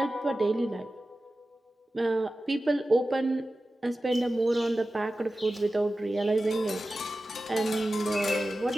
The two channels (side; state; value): both; normal; correlation 0.95